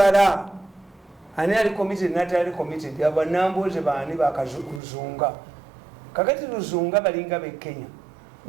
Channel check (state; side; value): drops out; left; at 4.8 s